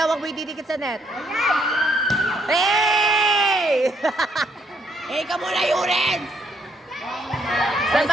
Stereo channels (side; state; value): both; normal; correlation 0.72